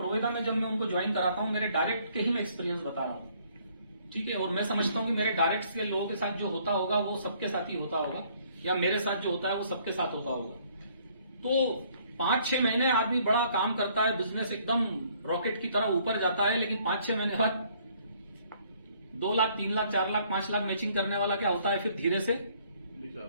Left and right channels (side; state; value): both; inverted; correlation -0.63